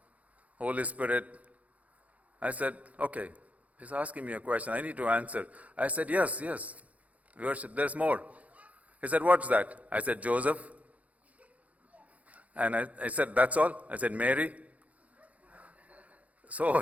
Holy Spirit. I said, okay, he's asking me a question, I need to answer. I said, yes, we worship, there's more. He said, what's that? I said, Joseph. And I said, that's all? I said, Mary. So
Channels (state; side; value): late; left; 0.069 ms